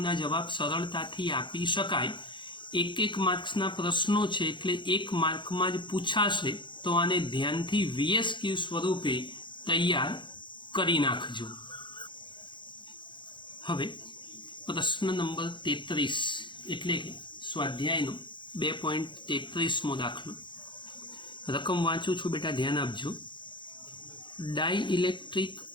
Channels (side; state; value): right; late; 0.23 ms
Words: જવાબ સરળતાથી આપી શકાય. એક માર્ક્સના પ્રશ્નો છે એટલે 1 માર્કમાં જ પૂછાશે, તો આને ધ્યાનથી VS ક્યુબ સ્વરૂપે તૈયાર કરી નાખજો. હવે પ્રશ્ન નંબર 33 એટલે કે સ્વાધ્યાયનો 2.33મો દાખલો. રકમ વાંચું છું બેટા, ધ્યાન આપજો. ડાઇઇલેક્ટ્રિક